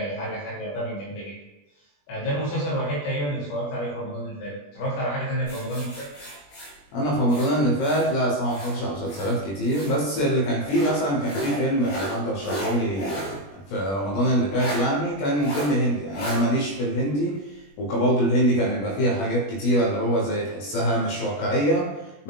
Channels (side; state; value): right; late; 21 ms